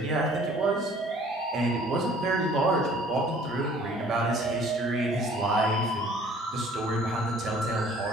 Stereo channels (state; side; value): normal; both; correlation 0.54